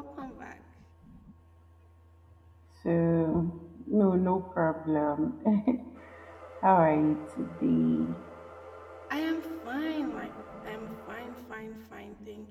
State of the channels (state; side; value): identical; both; correlation 1.00